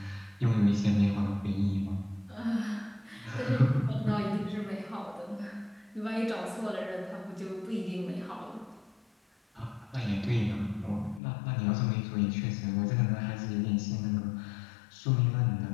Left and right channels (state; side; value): drops out; right; at 11.2 s